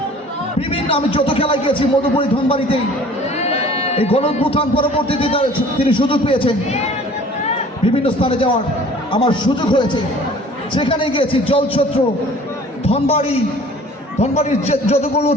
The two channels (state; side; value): normal; both; correlation 0.49